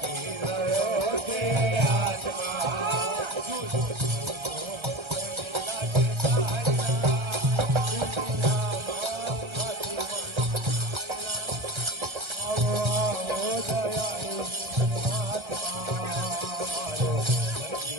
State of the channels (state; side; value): late; left; 1.3 ms